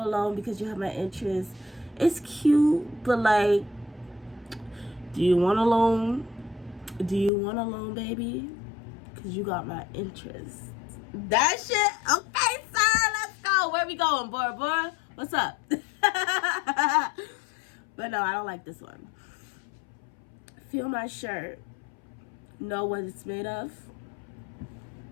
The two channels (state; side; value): drops out; right; at 7.3 s